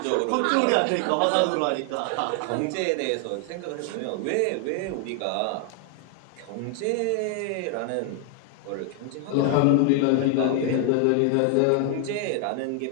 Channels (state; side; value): different; both; correlation 0.00